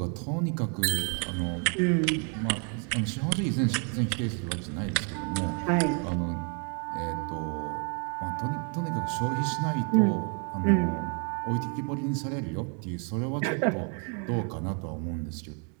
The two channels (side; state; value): left; quieter; 39.5 dB